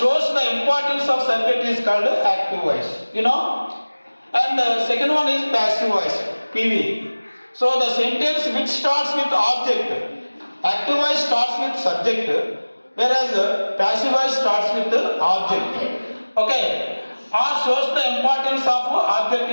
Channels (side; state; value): both; inverted; correlation -1.00